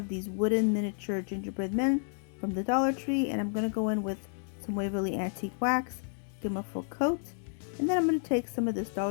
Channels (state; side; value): silent; right; 57 dB below the other